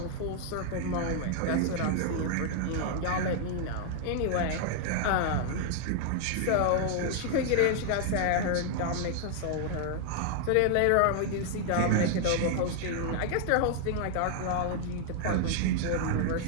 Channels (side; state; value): both; different; correlation 0.00